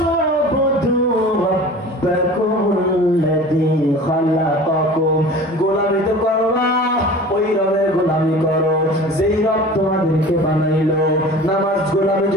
উবুদু রাব্বাকুমুল্লাযী খালাকাকুম, গোলামি তো করবা ওই রবের গোলামি করো যেই রব তোমাদেরকে বানাইলো। নামাজ গোলামি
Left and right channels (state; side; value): normal; both; correlation 0.40